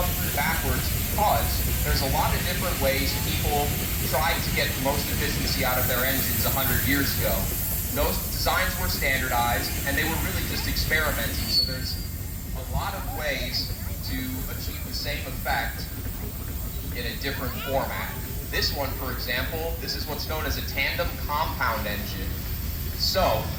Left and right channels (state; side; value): identical; both; correlation 1.00